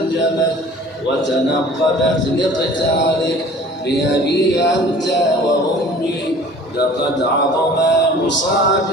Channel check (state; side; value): normal; both; correlation 0.47